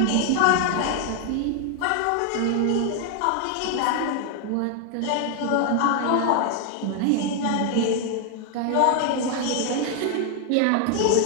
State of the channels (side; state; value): both; different; correlation 0.00